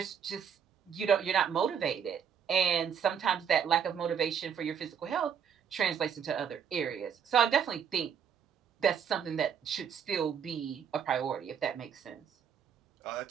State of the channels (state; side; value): quieter; left; 7.7 dB